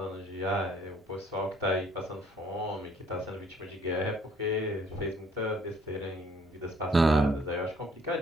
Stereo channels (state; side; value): normal; both; correlation 0.62